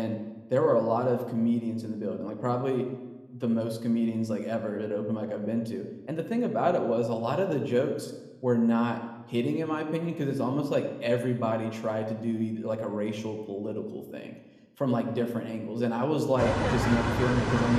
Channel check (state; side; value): identical; both; correlation 1.00